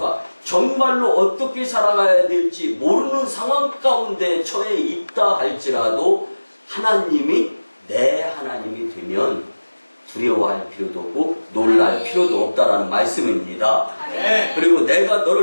정말로 어떻게 살아가야 될지 모르는 상황 가운데 처해 있다 할지라도 하나님이 내 하나님이 되면 두려워할 필요도 없고 놀랄 필요도 없다라는 말씀입니다. 그리고 내가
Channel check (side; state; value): both; inverted; correlation -1.00